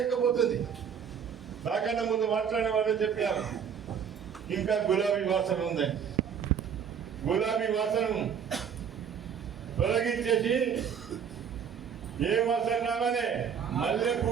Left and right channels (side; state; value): left; quieter; 7.6 dB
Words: నాకన్నా ముందు మాట్లాడిన వాళ్ళు చెప్పారు ఇంకా గులాబీ వాసన ఉందని. గులాబీ వాసన తొలగించేసి ఏ వాసన రావాలి, మల్లె